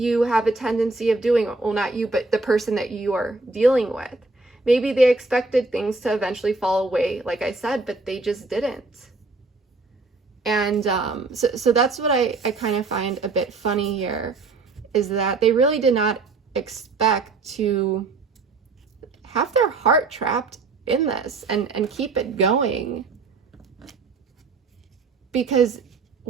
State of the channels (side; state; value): left; quieter; 3.7 dB